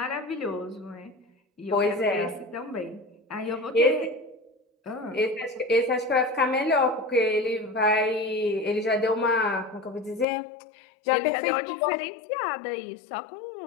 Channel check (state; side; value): drops out; right; at 10.2 s